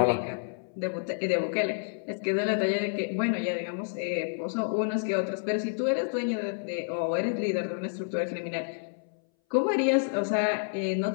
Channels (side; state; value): right; silent; 58 dB below the other